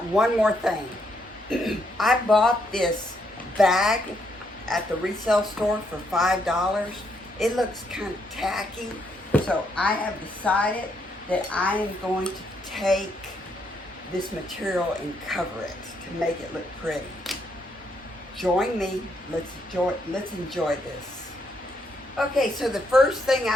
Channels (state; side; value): normal; both; correlation 0.75